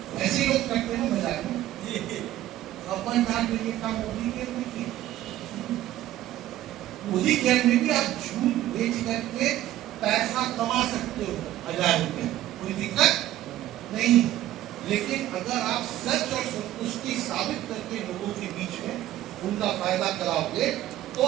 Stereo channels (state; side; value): quieter; left; 13.9 dB